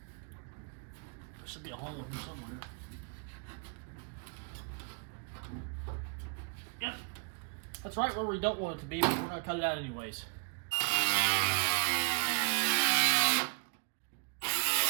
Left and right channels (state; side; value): quieter; left; 35.4 dB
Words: There should be a hole in here somewhere. Yep. That's right where we don't want it to be, but we're going to cut it out anyways.